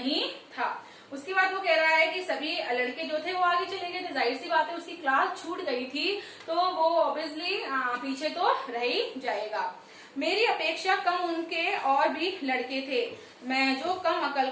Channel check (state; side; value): identical; both; correlation 1.00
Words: था। उसके बाद वो कह रहा है कि सभी लड़के जो थे वो आगे चले गए थे, जाहिर सी बात है उसकी क्लास छूट गई थी तो वो ऑब्वियसली पीछे तो रह ही जाएगा। मेरी अपेक्षा कम उनके और भी लड़के थे, मैं जो कम अकल